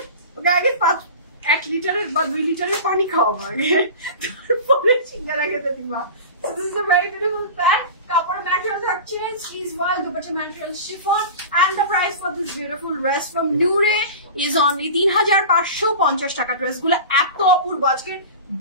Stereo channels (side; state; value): both; inverted; correlation -0.33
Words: ওকে আগে 1 লিটারের বা 2 লিটারের পানি খাওয়াবো আগে, তারপরে সিঙ্গারা খেতে দিবা। So this is a very beautiful pant. Kapor material থাকছে sleeves wall, dupatta material chiffon, and the price for this beautiful dress from Noore is only 3550 টাকা। ড্রেস গুলো এত অপূর্ব, আজকে